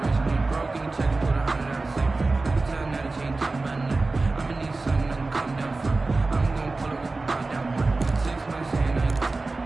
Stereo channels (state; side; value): quieter; left; 3.5 dB